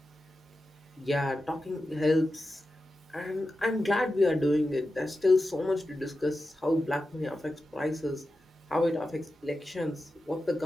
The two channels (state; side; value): normal; both; correlation 0.92